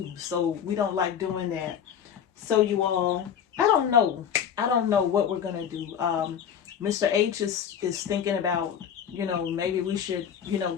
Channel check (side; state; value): right; quieter; 8.4 dB